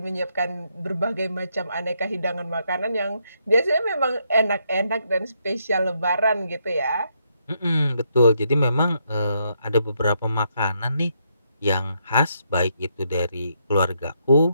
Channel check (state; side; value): inverted; both; correlation -0.77